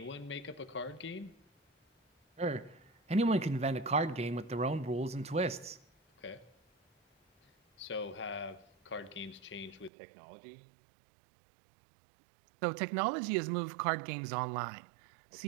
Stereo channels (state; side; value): drops out; left; at 9.9 s